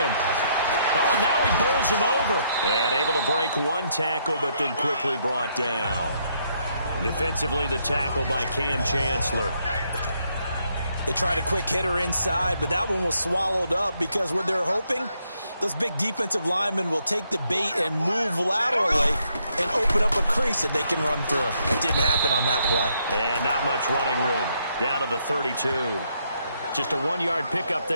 Oh, and now he bowls him over. And able to break one tackle, but then quickly brought down. Defensively, the tackle by Cam Chancellor. They tried a quick hitter inside, but that one was swallowed up because what they're hoping, those big defensive linemen will take the bait and move laterally and open up a crease that they can run through. It didn't happen on that play. And not much running room. Down to the 32. Just a 1-yard pickup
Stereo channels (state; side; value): inverted; both; correlation -0.74